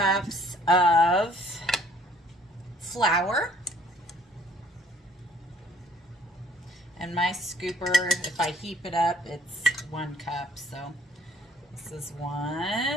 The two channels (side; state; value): both; normal; correlation 0.59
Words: of flour. And my scooper, if I heap it up, it's 1 cup. So this is